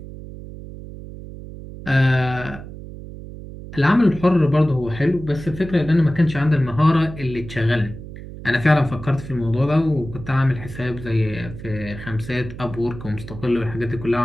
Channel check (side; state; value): right; noise; hum, 13 dB below the sound